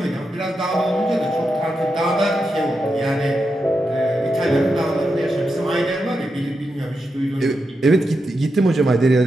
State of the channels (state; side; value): normal; both; correlation 0.87